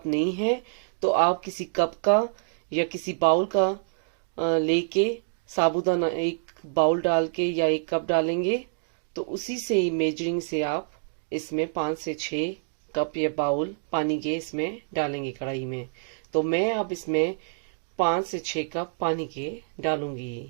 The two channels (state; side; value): silent; left; digital silence